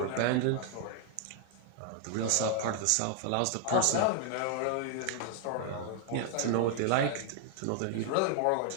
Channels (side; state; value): both; different; correlation 0.00